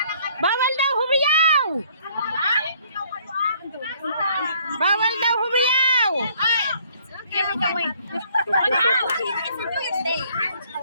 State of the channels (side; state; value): both; inverted; correlation -0.62